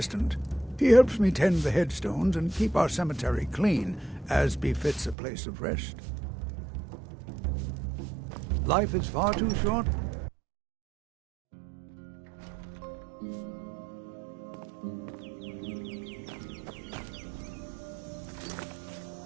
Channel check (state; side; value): drops out; left; at 5.2 s